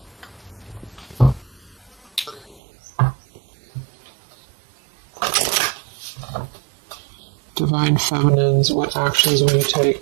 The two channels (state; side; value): drops out; left; at 2.6 s